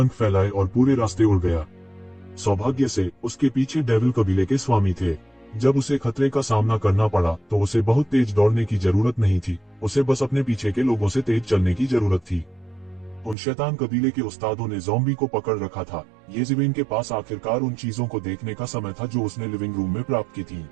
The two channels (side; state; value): left; drops out; at 13.4 s